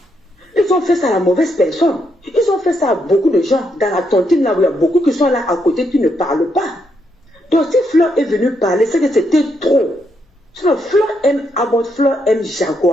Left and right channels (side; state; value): both; normal; correlation 0.78